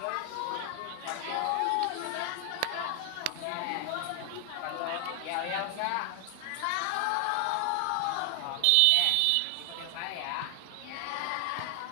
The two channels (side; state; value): both; different; correlation 0.00